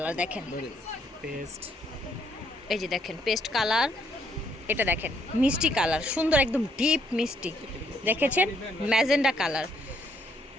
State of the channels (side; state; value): both; normal; correlation 0.70